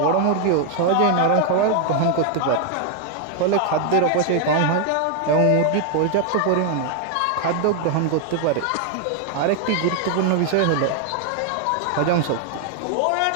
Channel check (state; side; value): different; both; correlation 0.00